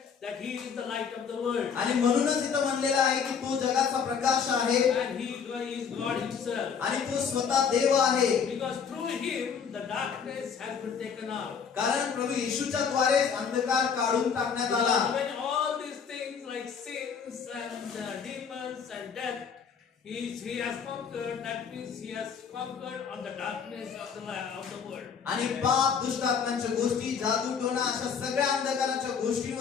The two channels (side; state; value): right; quieter; 6.6 dB